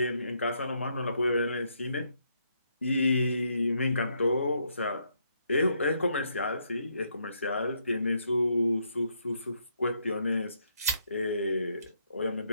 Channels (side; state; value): both; inverted; correlation -0.75